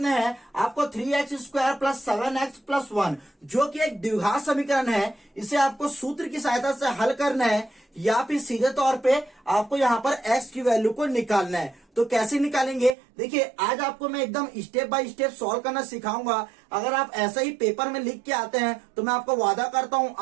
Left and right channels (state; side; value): drops out; left; at 13.0 s